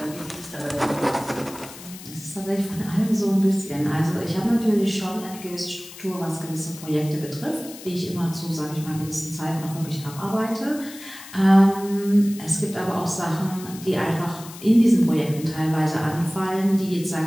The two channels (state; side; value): noise; left; hiss, 16 dB below the sound